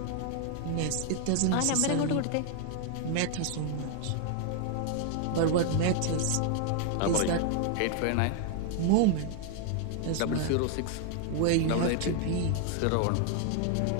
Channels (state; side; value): different; both; correlation 0.00